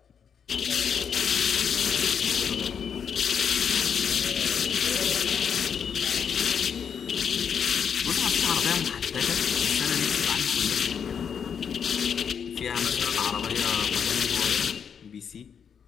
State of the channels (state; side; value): quieter; right; 7.3 dB